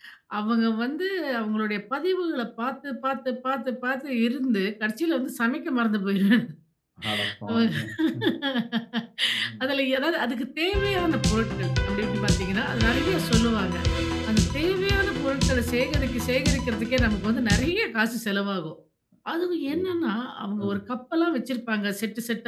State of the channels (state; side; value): identical; both; correlation 1.00